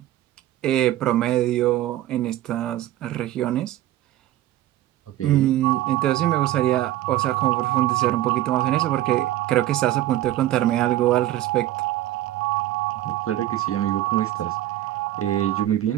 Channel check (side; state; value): left; quieter; 14.2 dB